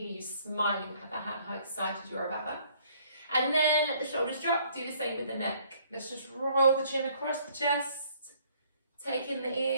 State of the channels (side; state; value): both; inverted; correlation -0.62